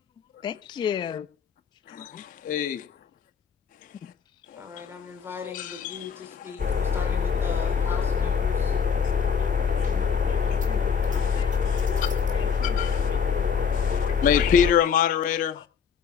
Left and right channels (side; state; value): right; quieter; 6.6 dB